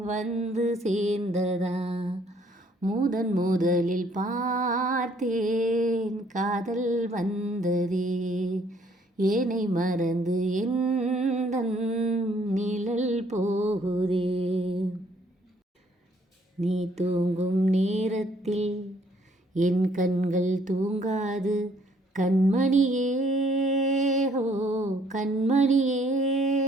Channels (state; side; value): normal; both; correlation 0.64